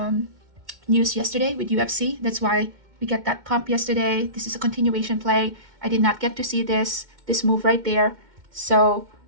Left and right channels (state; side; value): late; left; 2.1 ms